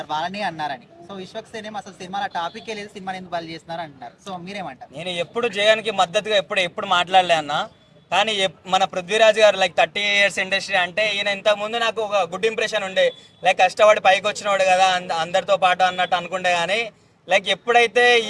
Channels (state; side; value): identical; both; correlation 1.00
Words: వాళ్ళని అన్నారని. సో విశ్వక్సేనేం అసలు సినిమాలో టాపిక్ లేదు, సినిమాని ఎందుకు వాళ్ళు చేస్తున్నారు అంటున్నారు. సో మీరేమంటారు? నేను ఎప్పుడు జయానికి మద్దతుగా ఎప్పుడు మాట్లాడలే అన్న. కానీ మన పృథ్వీరాజ్ గారు లైక్ 30 ఇయర్స్ ఇండస్ట్రీ అంటే ఈయన ఇంతకుముందు నాకు ఒక గుడ్ ఇంప్రెషన్ ఉండే. లైక్ కష్టపడి పైకి వచ్చినవాడు కదా అందరితో పాటు అన్నట్టు అనుకుంటే, కానీ లైక్ ఎప్పుడైతే